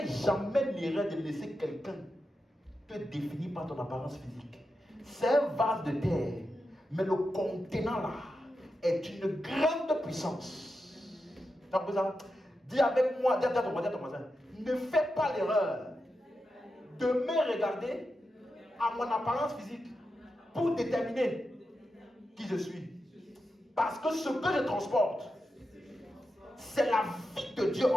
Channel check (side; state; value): both; normal; correlation 0.89